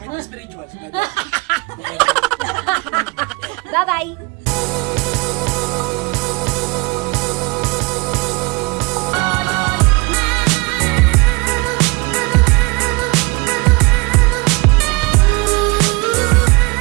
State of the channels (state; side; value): quieter; left; 27.2 dB